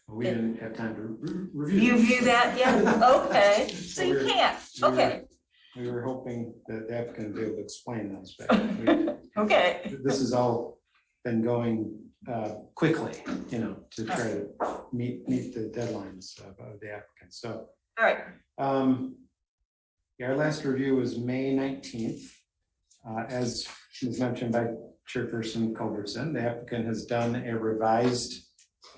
well, we didn't have time to review. You view that, yeah, okay, so you can't, okay. We were hoping that the applicant would be able to explain those, but Okay. this has all been going quickly, to try to meet the deadlines of the applicant. So, all right. Our last review was May 19th. As was mentioned by Chairperson Culbertson, the applicant has done a revised,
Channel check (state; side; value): identical; both; correlation 1.00